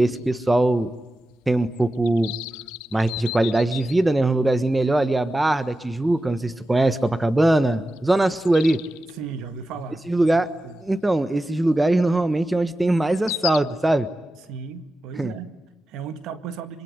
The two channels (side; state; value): both; normal; correlation 0.92